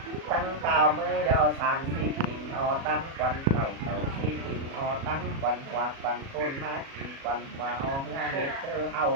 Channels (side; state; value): left; late; 37 ms